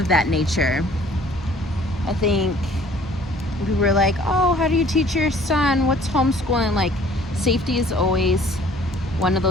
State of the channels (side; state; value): both; normal; correlation 0.54